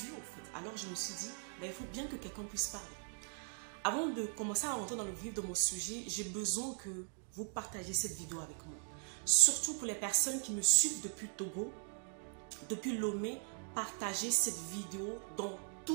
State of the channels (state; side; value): silent; left; 51 dB below the other